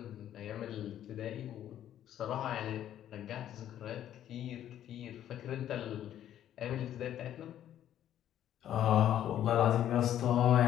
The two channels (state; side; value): quieter; right; 11.2 dB